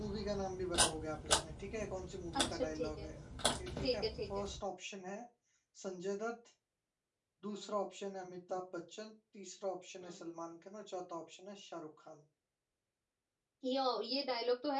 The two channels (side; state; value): both; identical; correlation 1.00